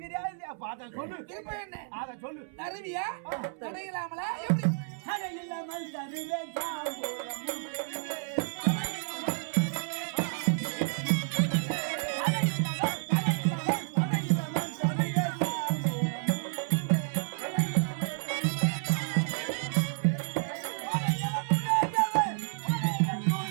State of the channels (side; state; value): left; silent; 57 dB below the other